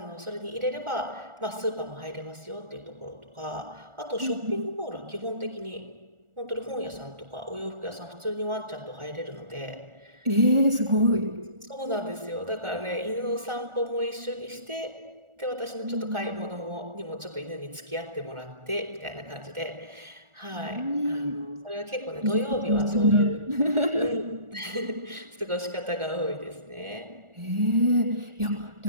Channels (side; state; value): left; late; 1.4 ms